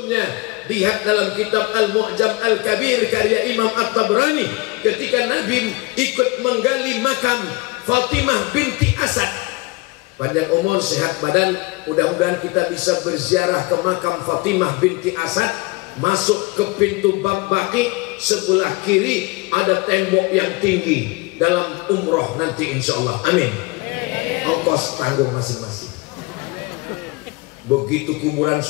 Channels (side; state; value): right; quieter; 24.8 dB